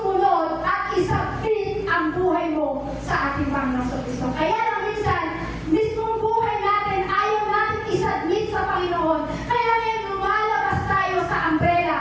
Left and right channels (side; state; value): both; identical; correlation 1.00